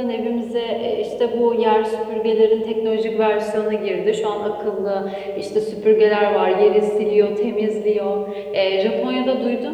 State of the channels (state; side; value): identical; both; correlation 1.00